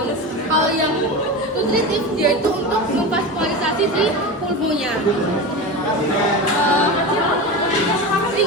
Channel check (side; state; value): both; normal; correlation 0.25